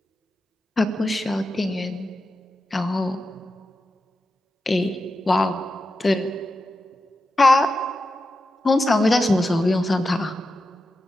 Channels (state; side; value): normal; both; correlation 0.90